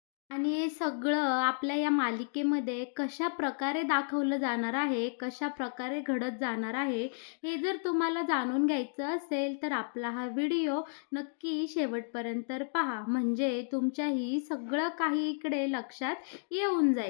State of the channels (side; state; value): right; silent; digital silence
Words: आणि हे सगळं आपल्या या मालिकेमध्ये कशा प्रकारे दाखवलं जाणार आहे, कशा प्रकारे घडत जाणार आहे, हे जर तुम्हाला जाणून घ्यायचं असेल तर आपला हा व्हिडिओ नक्की शेवटपर्यंत पहा. म्हणजे तुमच्याही सगळं काही इकडे लक्षात येऊन